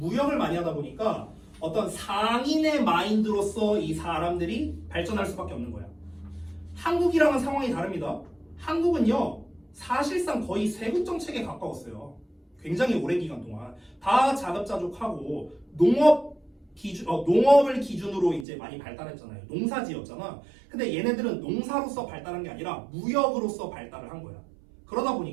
많이 하다 보니까 어떤 상인의 마인드로서 이 사람들이 발전할 수밖에 없는 거야. 한국이랑은 상황이 다릅니다. 한국은요 사실상 거의 세군 정책에 가까웠어요. 굉장히 오랜 기간 동안 다 자급자족하고 농업을 기준으로 이제 많이 발달했잖아요. 농사지었잖아. 근데 얘네들은 농사로서 발달한 게 아니라 무역으로서 발달을 한 거야. 그러다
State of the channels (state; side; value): drops out; left; at 18.4 s